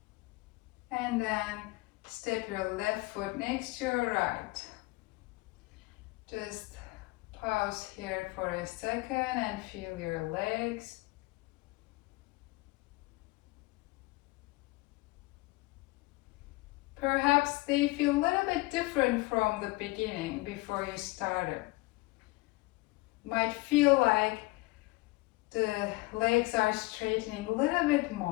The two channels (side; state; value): right; quieter; 22.6 dB